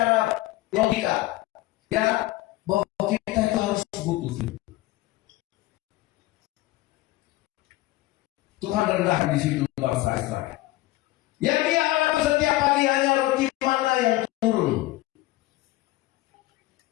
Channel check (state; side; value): quieter; right; 18.2 dB